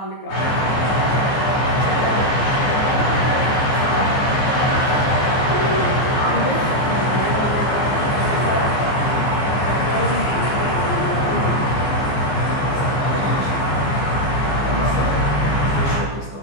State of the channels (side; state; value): right; late; 15 ms